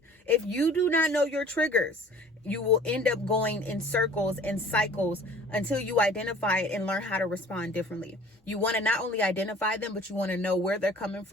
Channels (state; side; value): normal; both; correlation 0.49